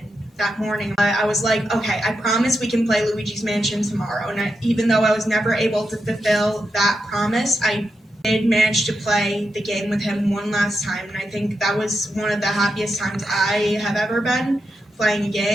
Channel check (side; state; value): both; normal; correlation 0.86